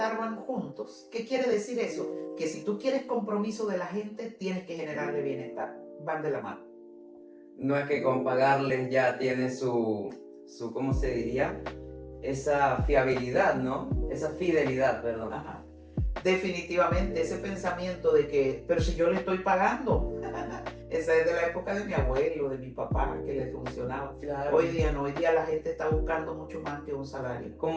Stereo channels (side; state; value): both; identical; correlation 1.00